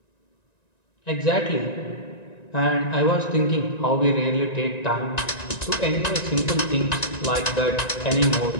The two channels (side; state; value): right; late; 1.9 ms